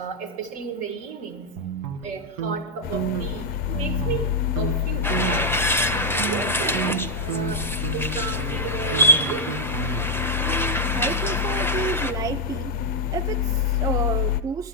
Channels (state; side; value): normal; both; correlation -0.01